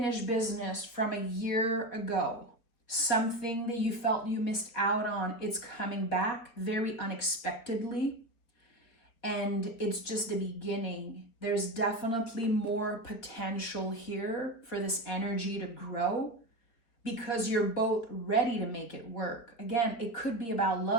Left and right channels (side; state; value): right; late; 4.1 ms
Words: business from a year ago. Something that you felt you missed out on. It's coming back very unexpectedly. And it's just the beginning. There's definitely more potential here for this energy to grow because you're both ready to make it work. Again, it could be about